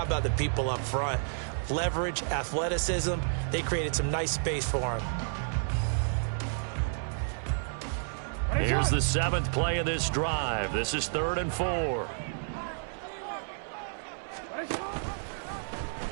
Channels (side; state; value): left; silent; 57 dB below the other